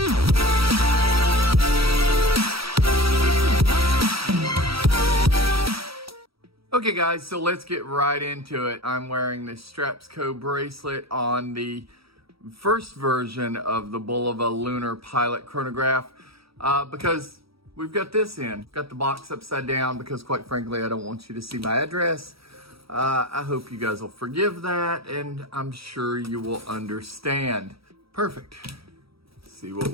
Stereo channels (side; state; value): left; late; 0.76 ms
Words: Okay guys, so let's get right into it. I'm wearing this STRAPSCO bracelet on the first version of the BULOVA LUNAR Pilot Chronograph because we've got this in. Got the box upside down because quite frankly, I don't want you to see my address. I hope you guys will forgive that, and I'm sure you will understand. Perfect. Let's see what